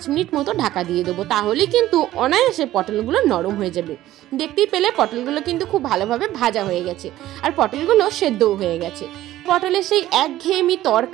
মিনিট মতো ঢাকা দিয়ে দেবো, তাহলে কিন্তু অনায়াসে পটলগুলো নরম হয়ে যাবে। দেখতেই পেলে পটলগুলো কিন্তু খুব ভালোভাবে ভাজা হয়ে গেছে আর পটলগুলো সেদ্ধও হয়ে গেছে। পটলের সেই একঘেয়েমি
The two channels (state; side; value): quieter; left; 14.5 dB